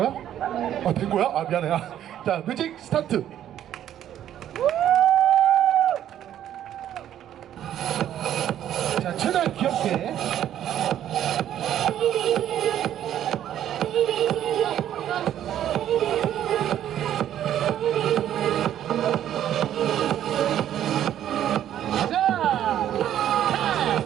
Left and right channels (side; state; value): left; quieter; 11.1 dB